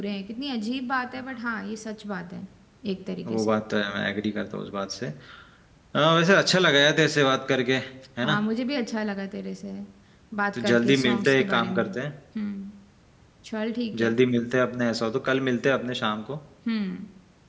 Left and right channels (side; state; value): both; identical; correlation 1.00